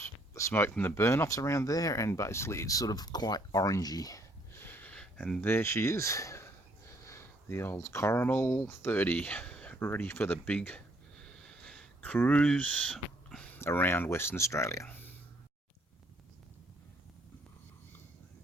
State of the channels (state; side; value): normal; both; correlation 0.66